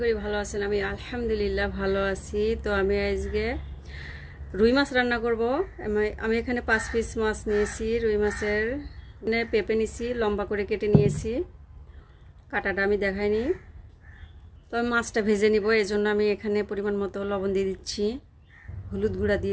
করি ভালো আছেন। আমি আলহামদুলিল্লাহ ভালো আছি। তো আমি আজকে রুই মাছ রান্না করব। আমি এখানে 5 পিস মাছ নিয়েছি। রুই মাছের পেঁপে নিয়েছি, লম্বা করে কেটে নিয়েছি। কাটাটা আমি দেখাইনি। তো আমি মাছটা ভেজে নিব, এই জন্য আমি এখানে পরিমাণ মতো লবণ দিয়ে দিচ্ছি, হলুদ গুঁড়া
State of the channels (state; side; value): identical; both; correlation 1.00